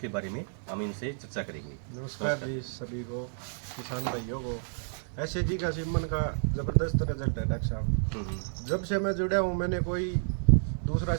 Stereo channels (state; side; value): silent; left; 55 dB below the other